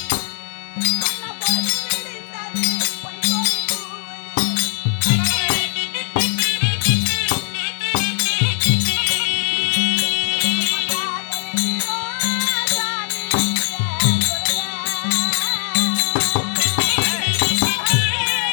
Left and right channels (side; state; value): right; silent; 66 dB below the other